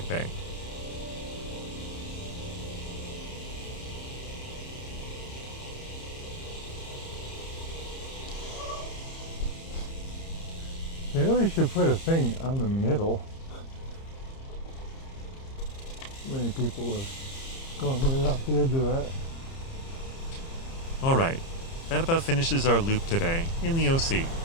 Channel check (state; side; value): late; right; 30 ms